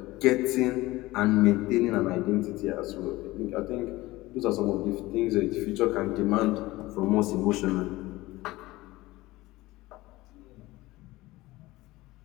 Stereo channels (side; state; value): right; quieter; 19.0 dB